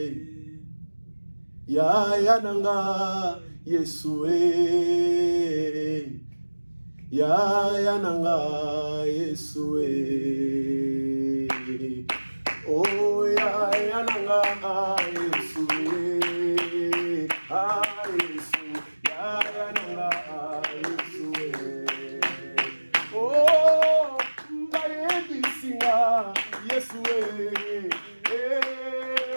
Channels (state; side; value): inverted; both; correlation -1.00